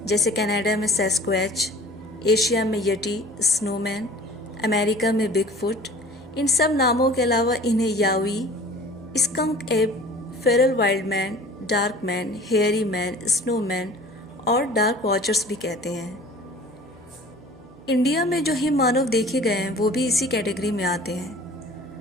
जैसे कनाडा में सैस्क्वैच, एशिया में यटी, स्नोमैन, अमेरिका में बिगफुट। इन सब नामों के अलावा इन्हें यावी, स्कंक एब, Feral wild man, dark man, hairy man, snowman और डार्क वॉचर्स भी कहते हैं। इंडिया में जो हिम मानव देखे गए हैं वो भी इसी कैटेगरी में आते हैं।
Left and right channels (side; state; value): right; noise; hum, 29 dB below the sound